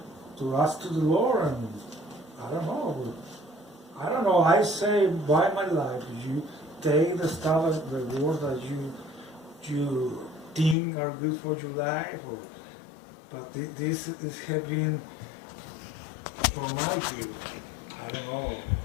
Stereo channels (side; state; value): right; drops out; at 10.8 s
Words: to ask to the Lord, and I don't know, I say by my life, you take the stuff, the words that you think are good for your life, but this is having for my good. I don't know.